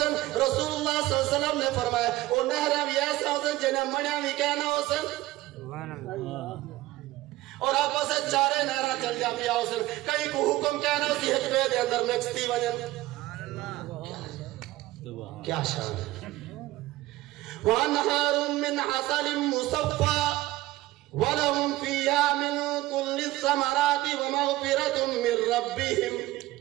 رسول اللہ صلی اللہ علیہ وسلم نے فرمایا او نہر بھی ایسا حسن جنہیں منیا بھی کہنا حسن، اور آپ سے چارے نہرہ چل جا پیا حسن، کئی کو حکم کہنا اسی حجبے دے اندر مکستی وجن، کیا شان ہے وَأَنْهَارٌ مِّنْ عَسَلٍ مُصَفَّى وَلَهُمْ فِيهَا مِنْ كُلِّ الثَّمَرَاتِ وَمَغْفِرَةٌ مِّن رَبِّهِمْ۔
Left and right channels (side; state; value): left; quieter; 17.3 dB